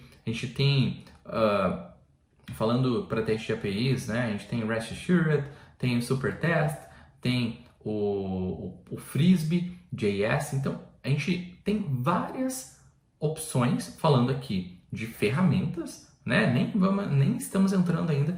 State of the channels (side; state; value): both; identical; correlation 1.00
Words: a gente tem, falando para testes de APIs, né, a gente tem o REST Assured, tem o Supertest, tem o Frisbee.js, então a gente tem várias opções, falando aqui de ferramentas, né? Nem estamos entrando